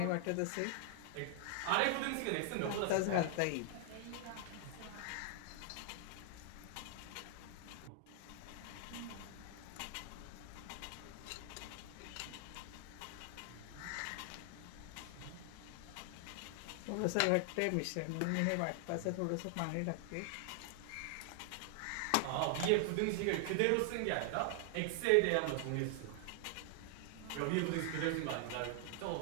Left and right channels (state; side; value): different; both; correlation 0.00